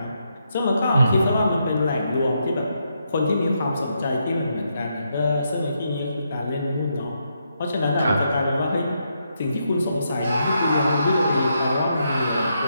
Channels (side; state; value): both; inverted; correlation -0.80